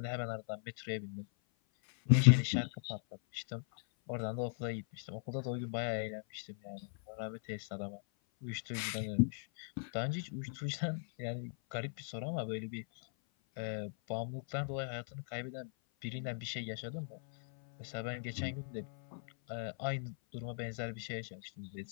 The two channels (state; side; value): silent; right; 52 dB below the other